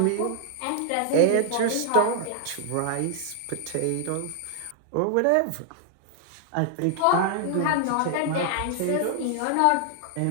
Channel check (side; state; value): both; different; correlation 0.00